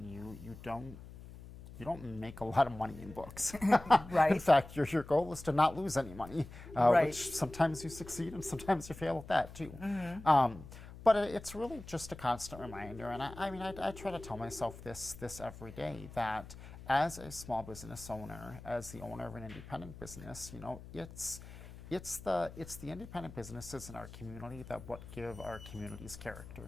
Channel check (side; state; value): left; noise; hum, 15 dB below the sound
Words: you don't make a lot of money in books. Right. In fact, your goal is to not lose any money, Right. which sometimes you succeed and sometimes you fail at that too. But it's really just a constant reminder, and I mean, I try to tell myself this every day, that as a small business owner, as the owner of an independent business, you know, it's the independent businesses in our community that what give our communities